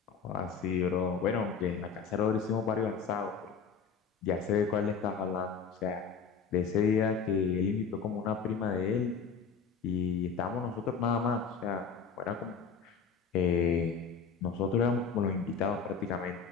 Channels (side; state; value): right; quieter; 5.9 dB